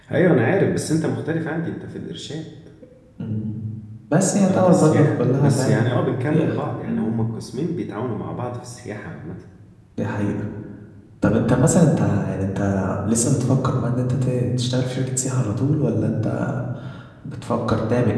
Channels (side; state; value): both; identical; correlation 1.00